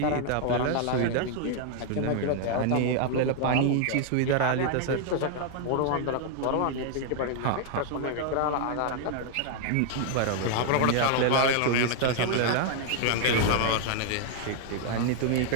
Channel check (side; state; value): both; different; correlation 0.00